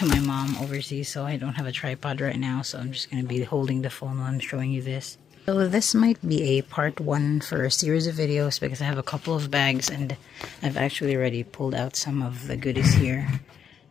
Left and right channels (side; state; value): right; quieter; 8.0 dB